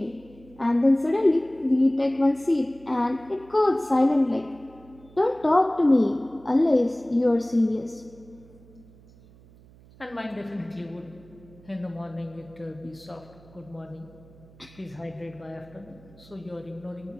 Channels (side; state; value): right; noise; hum, 24 dB below the sound